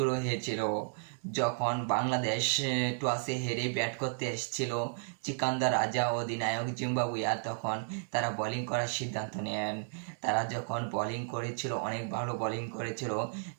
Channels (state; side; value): silent; left; digital silence